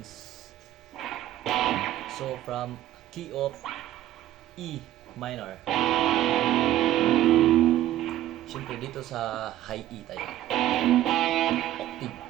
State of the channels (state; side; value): quieter; left; 13.5 dB